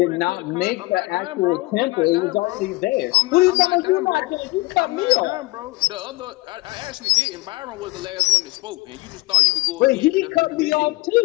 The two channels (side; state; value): right; quieter; 22.3 dB